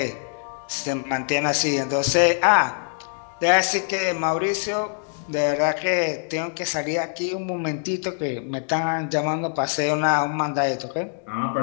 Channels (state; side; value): silent; right; digital silence